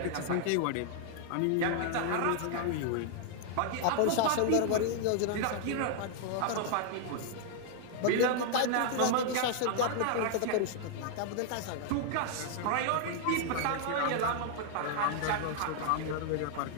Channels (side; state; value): both; different; correlation 0.00